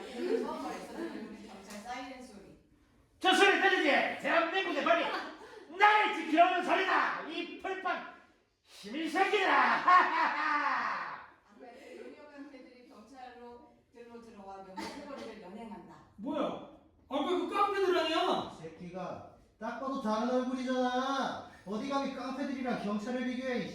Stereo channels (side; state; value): both; identical; correlation 1.00